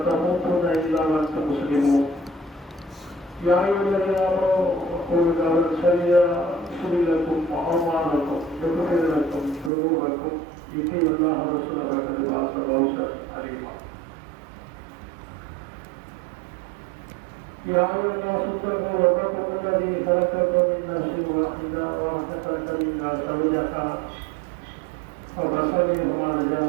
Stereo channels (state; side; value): drops out; left; at 9.7 s